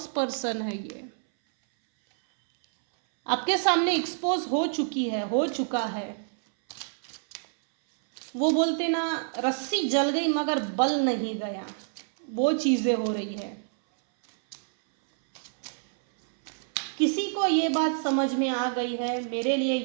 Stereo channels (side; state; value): left; silent; 60 dB below the other